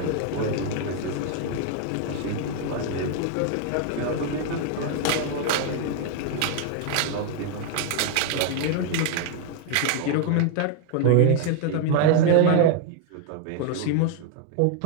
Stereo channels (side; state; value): both; different; correlation 0.00